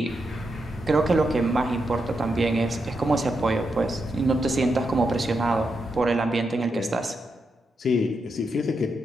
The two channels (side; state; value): both; normal; correlation 0.84